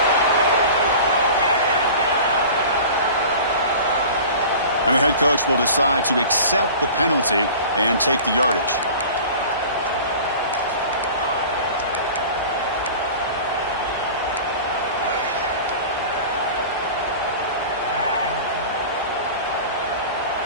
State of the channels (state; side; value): inverted; both; correlation -0.38